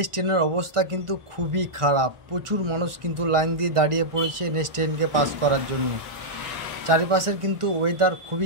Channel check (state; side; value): late; left; 1.4 ms